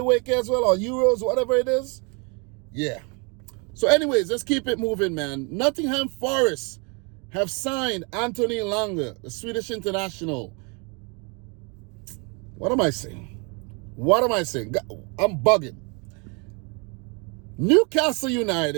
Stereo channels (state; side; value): quieter; left; 33.0 dB